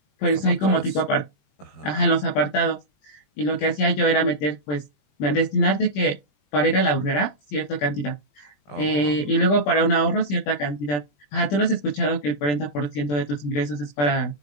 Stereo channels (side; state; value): right; late; 20 ms